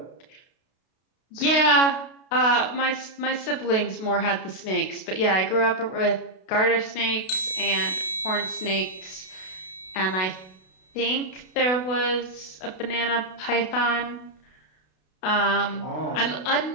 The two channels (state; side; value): late; right; 32 ms